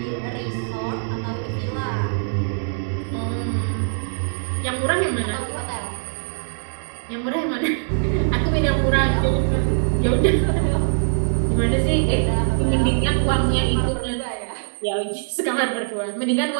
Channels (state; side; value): silent; left; digital silence